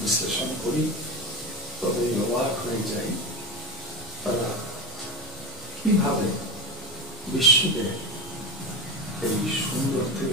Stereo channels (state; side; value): normal; both; correlation 0.21